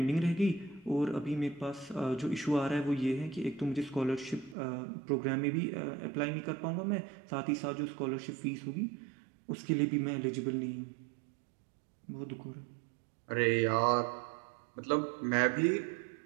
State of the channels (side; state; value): left; drops out; at 4.5 s